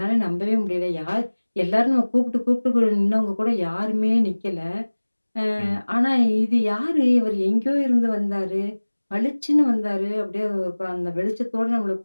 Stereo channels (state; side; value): inverted; both; correlation -1.00